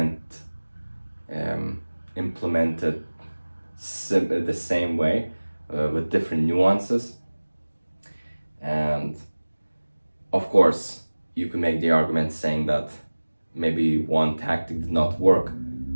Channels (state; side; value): inverted; both; correlation -1.00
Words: it the same way with different nuances. And of course, you can make the argument saying that maybe one tactic did not work